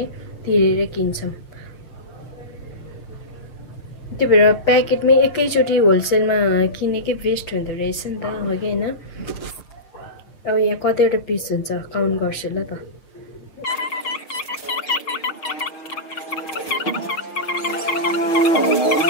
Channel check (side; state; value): right; late; 6.3 ms